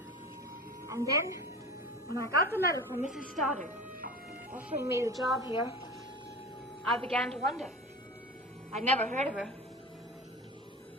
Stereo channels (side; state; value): both; normal; correlation 0.34